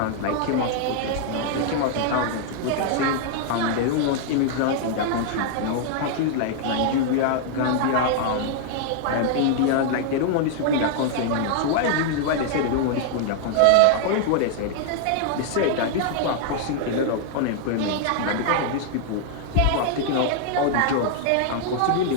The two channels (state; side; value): different; both; correlation -0.01